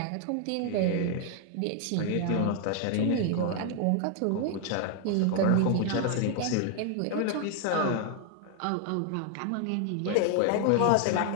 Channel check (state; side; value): different; both; correlation 0.00